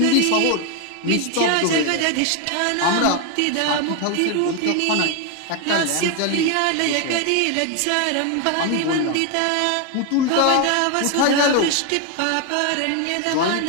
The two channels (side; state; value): both; different; correlation 0.01